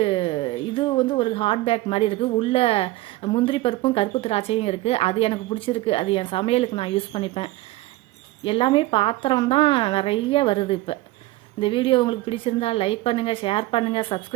ஒரு ஹாட் பேக் மாதிரி இருக்குது. உள்ளே முந்திரி பருப்பும் கருப்பு திராட்சையும் இருக்குது. அது எனக்கு பிடிச்சிருக்கு. அது என் சமையலுக்கு நான் யூஸ் பண்ணிப்பேன். எல்லாமே பாத்திரம் தான் நிறைய வருது. இப்போ இந்த வீடியோ உங்களுக்கு பிடிச்சிருந்தால் லைக் பண்ணுங்கள், ஷேர் பண்ணுங்கள்,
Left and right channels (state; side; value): quieter; left; 18.1 dB